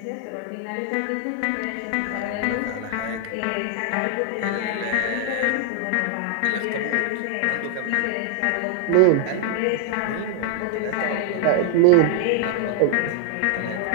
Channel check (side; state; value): both; different; correlation 0.00